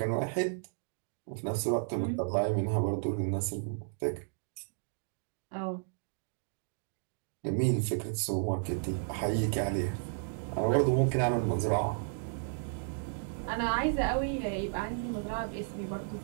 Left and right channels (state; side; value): silent; left; digital silence